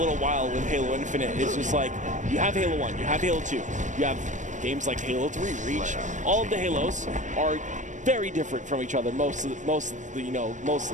while with Halo Infinite. It's just like, you have Halo 1, you have Halo 2, you have games like Halo 3, Reach. All of the Halos are very different from each other, mostly.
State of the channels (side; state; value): left; late; 0.36 ms